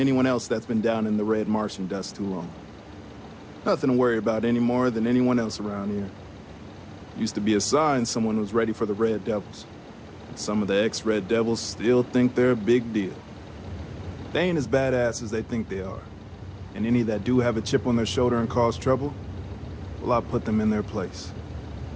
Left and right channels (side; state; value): both; identical; correlation 1.00